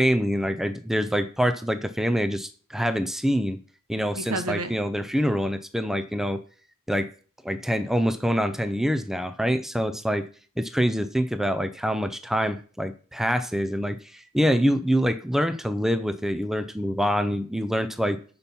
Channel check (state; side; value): normal; both; correlation 0.91